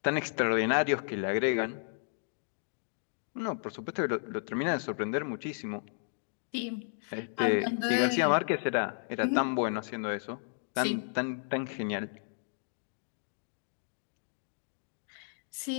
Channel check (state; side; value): silent; right; digital silence